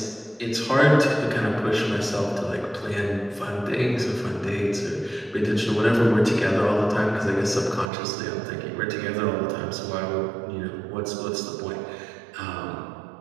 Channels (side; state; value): left; drops out; at 7.9 s